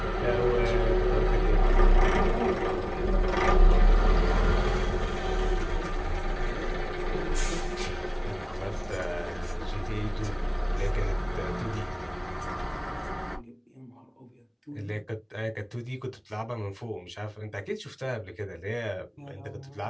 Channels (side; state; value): both; identical; correlation 1.00